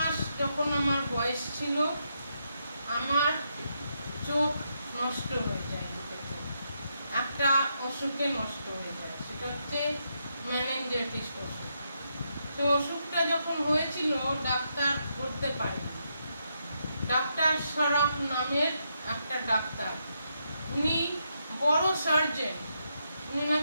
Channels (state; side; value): inverted; both; correlation -0.80